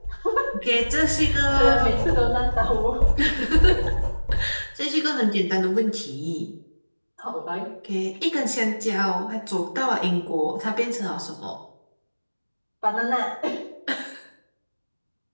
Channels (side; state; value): both; inverted; correlation -1.00